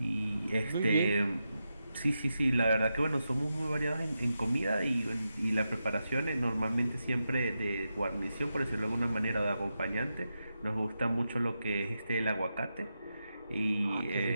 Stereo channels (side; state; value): both; inverted; correlation -0.88